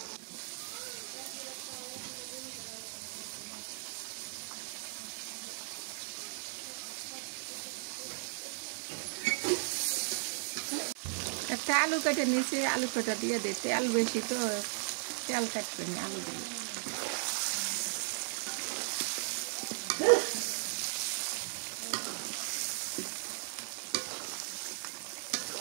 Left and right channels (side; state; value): left; silent; digital silence